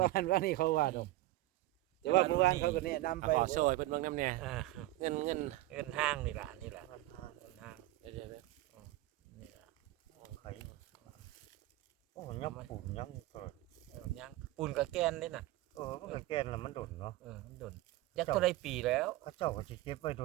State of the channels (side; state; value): left; quieter; 17.3 dB